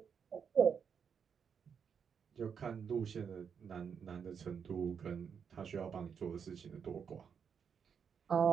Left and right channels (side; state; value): left; quieter; 6.9 dB